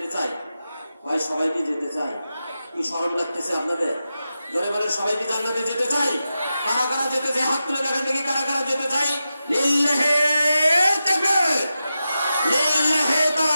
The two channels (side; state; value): both; inverted; correlation -0.91